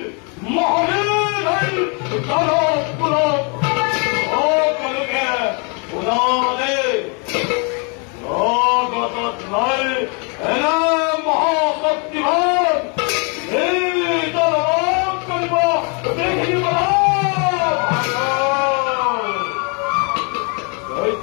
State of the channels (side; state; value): right; quieter; 35.4 dB